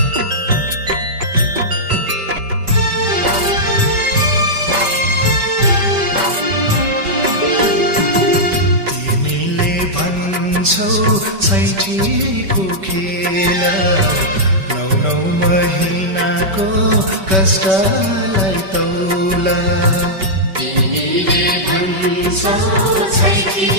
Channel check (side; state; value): left; late; 5.2 ms